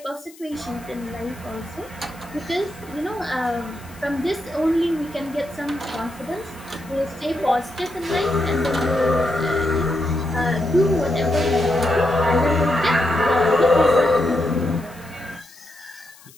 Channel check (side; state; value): left; noise; hiss, 23 dB below the sound